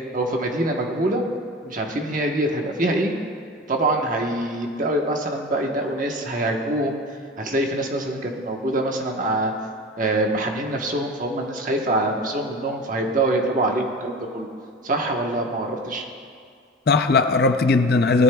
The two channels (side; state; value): both; normal; correlation 0.33